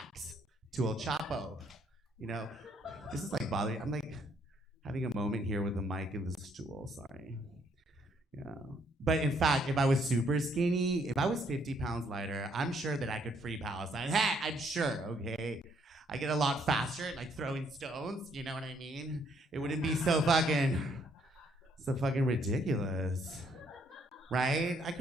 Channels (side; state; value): both; normal; correlation 0.68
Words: to El Chapo. You know, this is like bothering. I'm like having a moment here with the mic and the stool. Sorry. Yeah. But in fact, if I was super skinny, if I was 50 pounds lighter, I'm sure that I could free Palestine. Hey, I'm sure, okay? I get a lot faster at, like, throwing stones, you know what I mean? It wouldn't be so fucking ridiculous, right? I